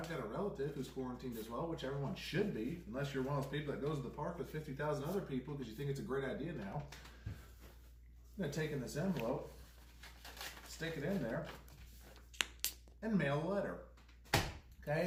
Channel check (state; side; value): identical; both; correlation 1.00